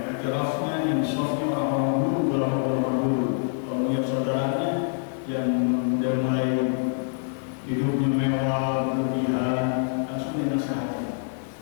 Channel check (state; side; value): silent; right; 61 dB below the other